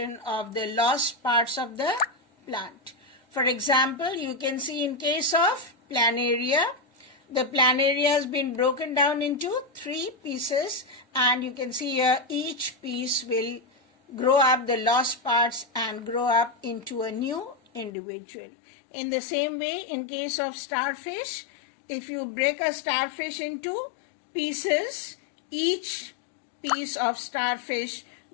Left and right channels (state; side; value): drops out; right; at 17.9 s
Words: of the lost parts of the plant. For example, you can see in case of planaria, the planaria has been broken down into 3 pieces, and you can see here each piece will grow up the lost parts and grow up into a new individual. In the same way, in case of starfish, if you break a starfish into pieces, each piece of starfish